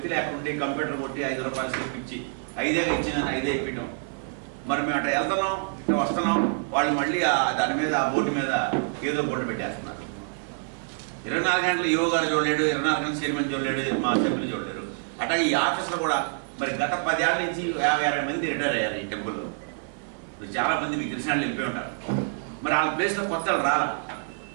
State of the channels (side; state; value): left; silent; 60 dB below the other